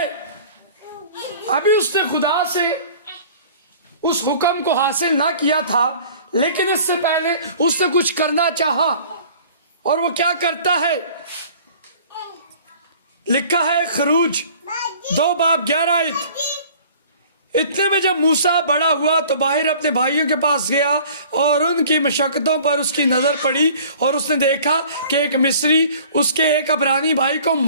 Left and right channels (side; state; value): both; inverted; correlation -0.49